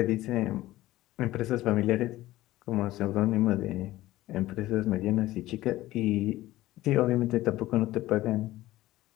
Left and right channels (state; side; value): quieter; right; 16.4 dB